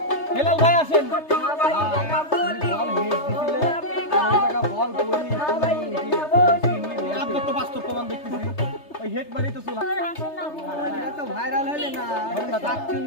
হেলাল ভাই আসেন। আপনার তো বাস্তব প্রমাণ দেখতেছি, ওই হেড মারি তো চলা। এটা তো ভাইরাল হইলে না,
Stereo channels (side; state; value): right; late; 3.3 ms